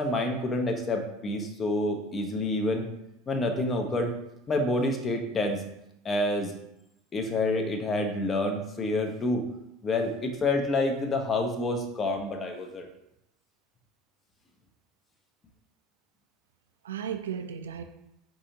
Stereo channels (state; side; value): normal; both; correlation 0.48